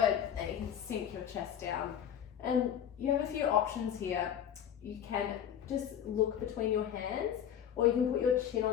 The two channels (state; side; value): quieter; right; 9.5 dB